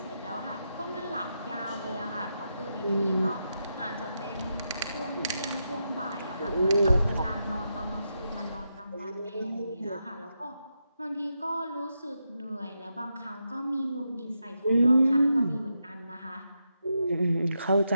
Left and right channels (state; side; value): inverted; both; correlation -0.85